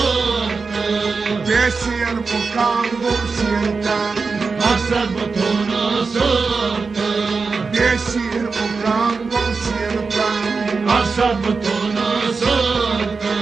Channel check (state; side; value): quieter; left; 4.6 dB